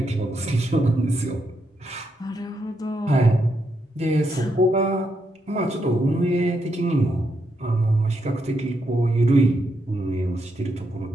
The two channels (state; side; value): normal; both; correlation 0.80